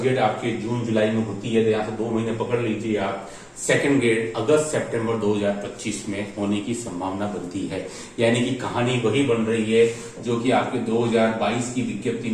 आपके जून जुलाई में होती है तो यहाँ से 2 महीने पकड़ लीजिए आप, सेकंड ग्रेड अगस्त सितंबर 2025 में होने की संभावना बनती है। यानी कि कहानी वही बन रही है जो कि आपके 2022 की विज्ञप्ति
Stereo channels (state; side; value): identical; both; correlation 1.00